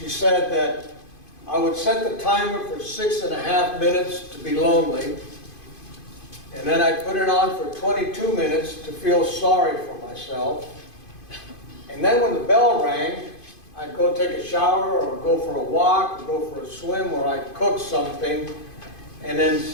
said that I would set the timer for 6.5 minutes to be lonely, and then I'd put it on for 22 minutes to feel sorry for myself. And then when the bell rang, I'd go take a shower or go for a walk or go for a swim, or I'd cook something and then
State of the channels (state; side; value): late; right; 2.5 ms